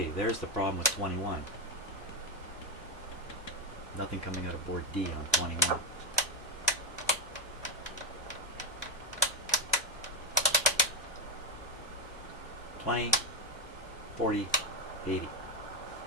there's the problem with 21. Nothing coming out of board D on 21. $20, $40, $80.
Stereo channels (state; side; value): normal; both; correlation 0.08